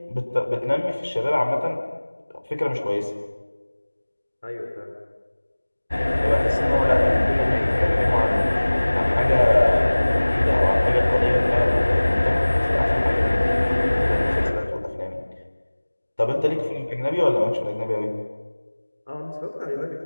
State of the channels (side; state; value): both; inverted; correlation -1.00